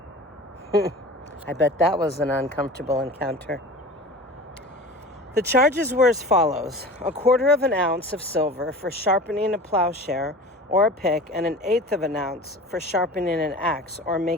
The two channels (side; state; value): both; normal; correlation 0.37